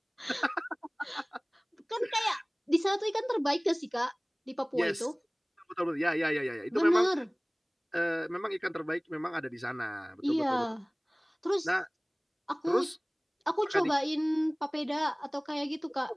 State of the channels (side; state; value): both; identical; correlation 1.00